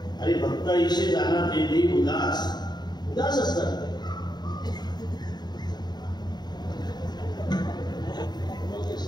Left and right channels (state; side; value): late; right; 0.20 ms